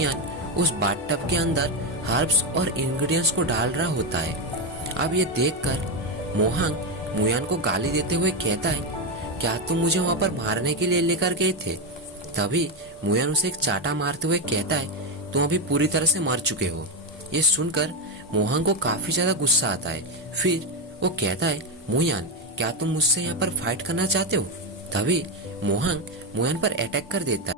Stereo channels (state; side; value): normal; both; correlation 0.09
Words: उस बाथटब के अंदर हर्ब्स और इंग्रेडिएंट्स को डाल रहा होता है। अब ये देखकर मोहांग मुयान को गाली देते हुए कहता है क्या तुम मुझे वहां पर मारने के लिए लेकर गए थे? तभी मुयान उसे एक चाटा मारते हुए कहता है तुम अभी पूरी तरह से मर चुके हो। ये सुनकर मोहांग को काफी ज्यादा गुस्सा आता है। फिर वो कहता है मुयान क्या तुम मुझसे यहाँ पर फाइट करना चाहते हो? तभी मोहांग मुयान पर अटैक कर देता